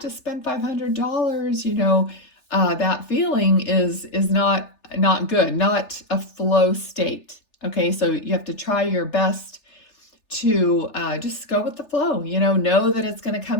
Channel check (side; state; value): right; late; 3.4 ms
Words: spend $500, that feeling is not good, not a flow state. Okay, so you have to try your best to just go with the flow, know that it's going to